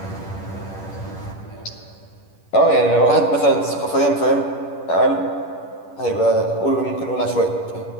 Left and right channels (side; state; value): right; late; 10 ms